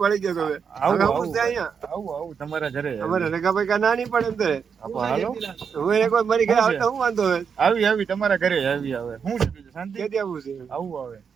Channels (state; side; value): quieter; left; 6.6 dB